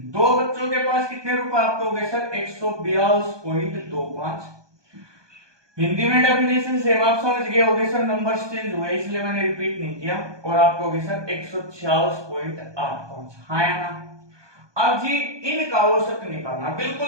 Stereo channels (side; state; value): left; late; 1.2 ms